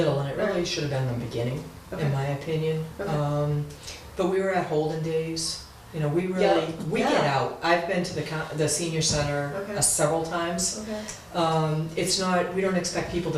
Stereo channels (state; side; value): identical; both; correlation 1.00